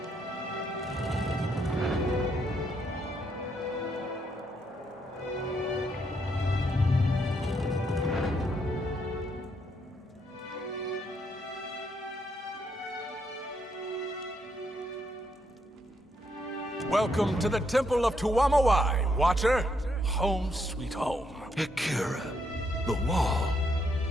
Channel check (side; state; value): both; normal; correlation 0.76